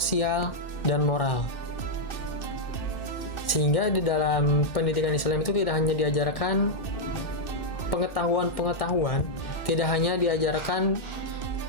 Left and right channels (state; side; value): late; right; 2.6 ms